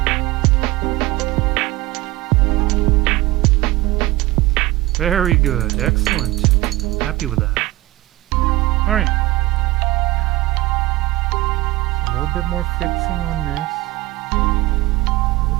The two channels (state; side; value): quieter; left; 18.9 dB